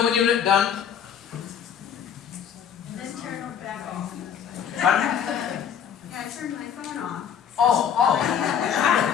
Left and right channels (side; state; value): right; quieter; 8.2 dB